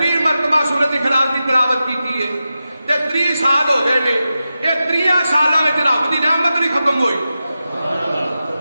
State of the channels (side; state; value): both; inverted; correlation -0.91